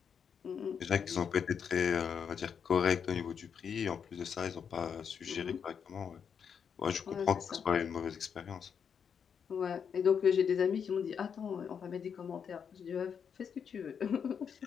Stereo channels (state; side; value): quieter; right; 7.1 dB